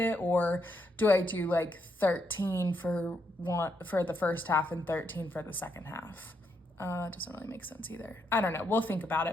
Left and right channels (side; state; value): both; normal; correlation 0.79